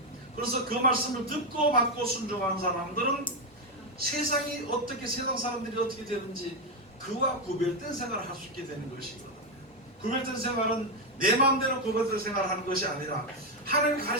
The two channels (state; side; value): normal; both; correlation 0.06